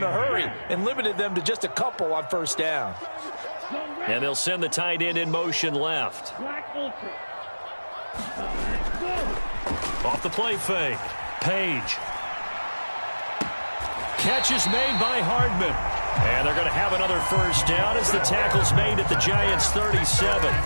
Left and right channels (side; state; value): both; inverted; correlation -1.00